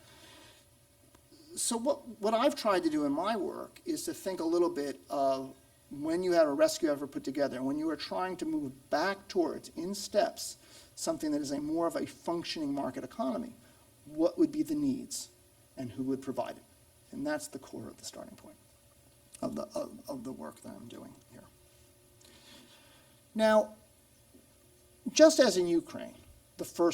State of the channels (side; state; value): both; identical; correlation 1.00